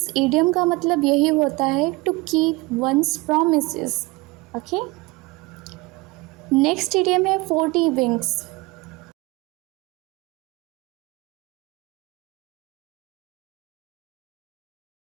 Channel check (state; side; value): quieter; left; 23.4 dB